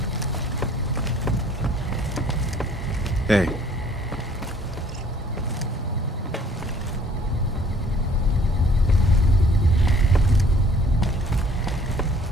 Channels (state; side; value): normal; both; correlation 0.57